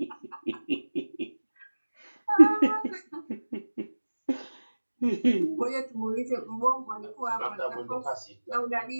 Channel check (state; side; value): inverted; both; correlation -1.00